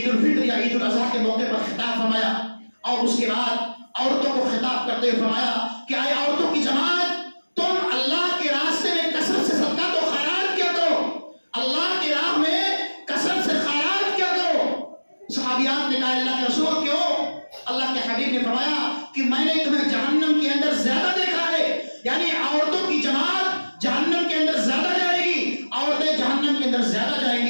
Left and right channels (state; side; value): inverted; both; correlation -1.00